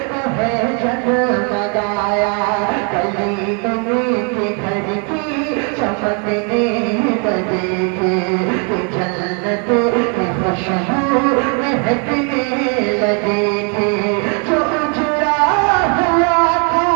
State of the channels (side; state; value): left; quieter; 38.4 dB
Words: को है जगमगाया, गली गली के घर की चमकने लगेगी, जन्नत की खुशबू महकने लगेगी, जो उजड़ा हुआ था